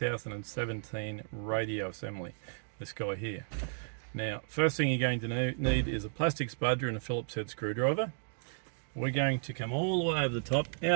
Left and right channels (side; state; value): left; silent; digital silence